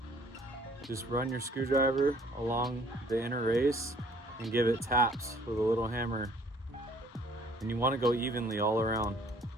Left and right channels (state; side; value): normal; both; correlation 0.58